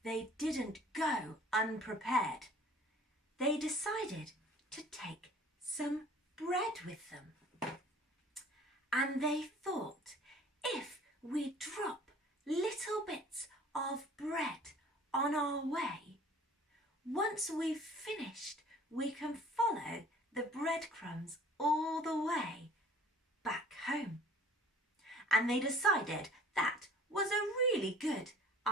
they didn't go unprepared. They decided to take some bread with them. And they thought, if we drop little bits of bread on our way, once we've finished, we can follow the breadcrumbs all the way back home. And they decided that was a really good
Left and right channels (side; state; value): both; normal; correlation 0.50